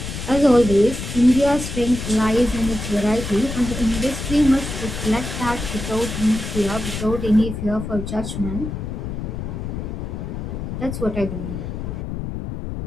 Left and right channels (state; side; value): noise; left; rumble, 6 dB below the sound